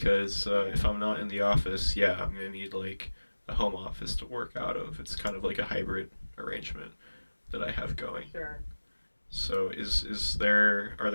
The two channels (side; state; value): both; inverted; correlation -1.00